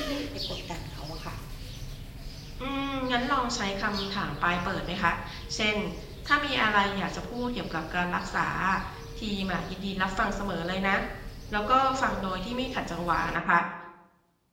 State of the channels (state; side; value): identical; both; correlation 1.00